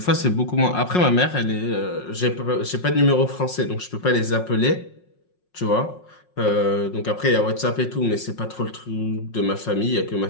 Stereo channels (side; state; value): right; late; 5.5 ms